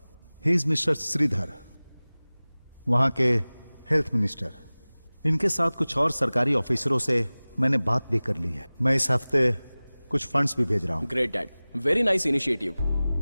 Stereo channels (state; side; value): inverted; both; correlation -0.99